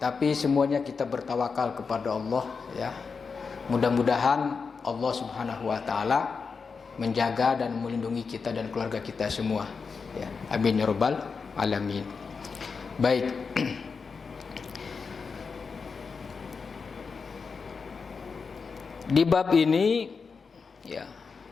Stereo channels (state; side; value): quieter; right; 5.2 dB